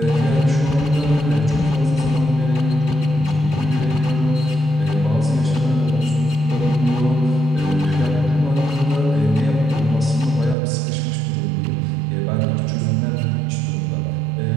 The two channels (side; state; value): left; drops out; at 10.6 s